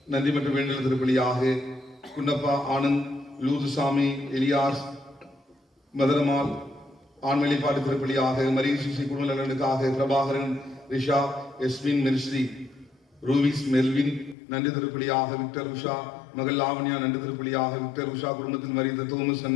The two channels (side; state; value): right; drops out; at 14.4 s